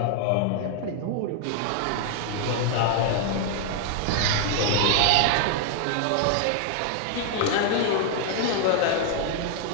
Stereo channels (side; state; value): both; different; correlation 0.00